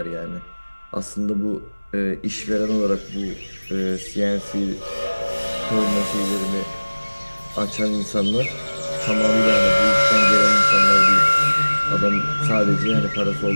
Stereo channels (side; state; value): both; inverted; correlation -1.00